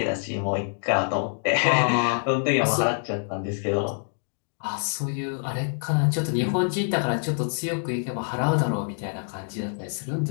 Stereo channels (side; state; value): right; silent; digital silence